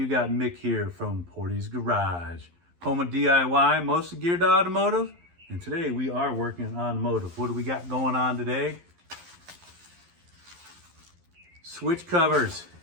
got Mick here from Portie's Garage, home of DIY, mostly geared to automotive. And today we are working on automotive. What do we got going on today? Switch covers.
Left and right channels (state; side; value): late; left; 11 ms